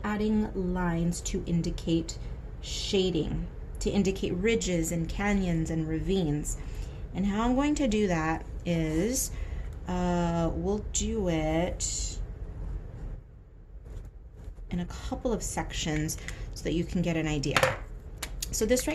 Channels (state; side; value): identical; both; correlation 1.00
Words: adding lines to indicate shading, to indicate ridges and canyons and ravines. And how I'm going to do that is we'll do it in a couple of sections so that you can get an idea. So this